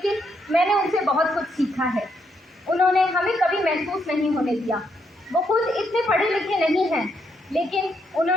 मैंने उनसे बहुत कुछ सीखा है। उन्होंने हमें कभी महसूस नहीं होने दिया। वो खुद इतने पढ़े लिखे नहीं हैं, लेकिन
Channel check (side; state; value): both; normal; correlation 0.76